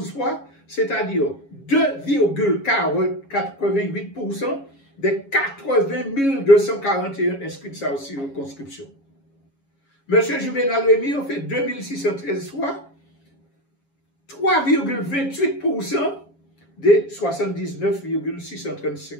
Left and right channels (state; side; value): late; right; 7.3 ms